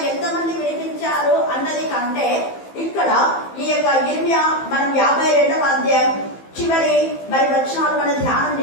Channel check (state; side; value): late; right; 15 ms